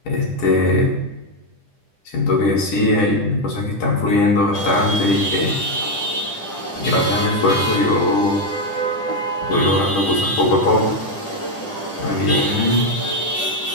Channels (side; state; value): right; late; 10 ms